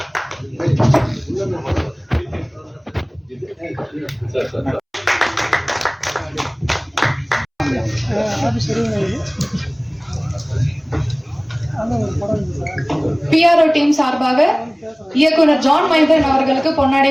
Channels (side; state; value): both; identical; correlation 1.00